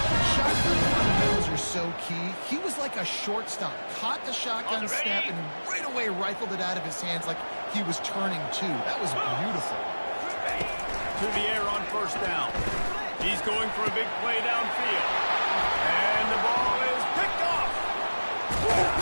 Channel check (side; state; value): both; inverted; correlation -1.00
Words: Shotgun fundamentals are so key. He was like a shortstop. Caught the shotgun snap and right away rifled it out of his hands like he was turning two. That was beautiful. To the air on first down. He's going for a big play downfield. And the ball is picked off.